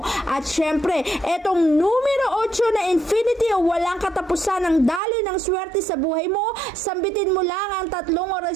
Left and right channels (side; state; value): left; drops out; at 5.0 s